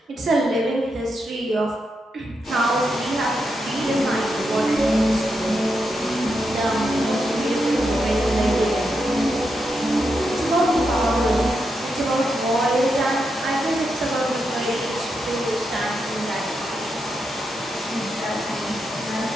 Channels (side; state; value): both; normal; correlation 0.84